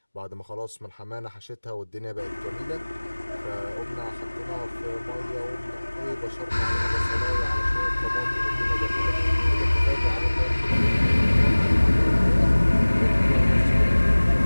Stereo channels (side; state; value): both; inverted; correlation -1.00